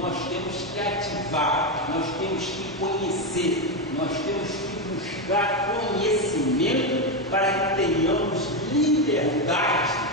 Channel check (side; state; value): both; normal; correlation 0.09